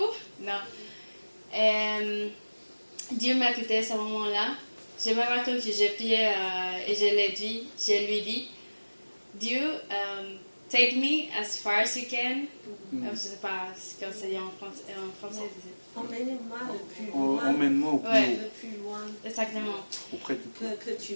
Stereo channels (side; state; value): both; inverted; correlation -1.00